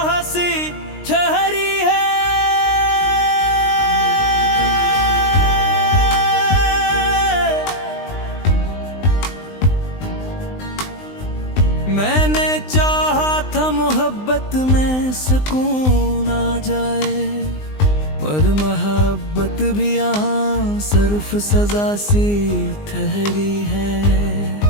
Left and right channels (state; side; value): late; right; 19 ms